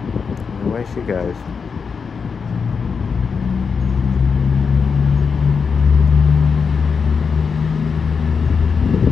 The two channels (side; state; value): right; quieter; 5.6 dB